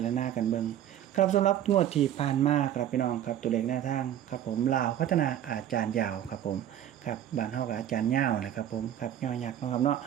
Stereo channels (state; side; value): quieter; left; 11.1 dB